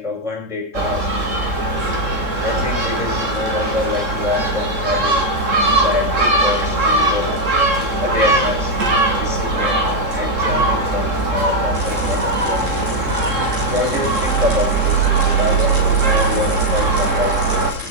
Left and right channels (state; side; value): late; left; 3.7 ms